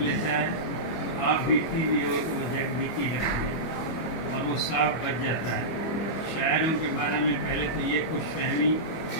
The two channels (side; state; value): right; late; 25 ms